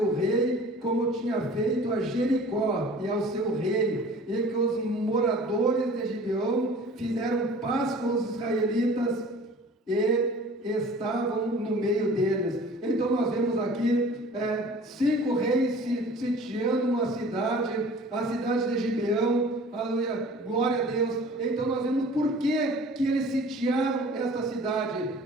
rei como tinha feito a Jericó e ao seu rei, e que os moradores de Gibeão fizeram paz com os israelitas e estavam no meio deles. Então nós vemos aqui 5 reis sitiando uma cidade, a cidade de Gibeão, aleluia, glória a Deus. Então nós vemos por que eles sitiaram esta cidade,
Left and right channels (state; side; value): normal; both; correlation 0.46